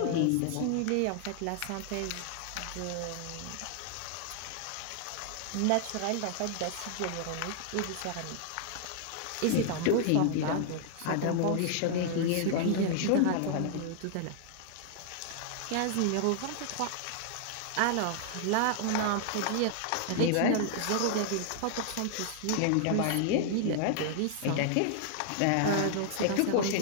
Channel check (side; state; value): both; different; correlation -0.01